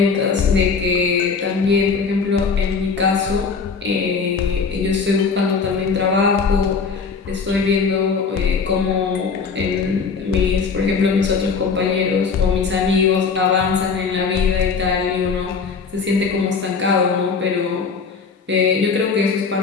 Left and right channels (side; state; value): right; quieter; 5.2 dB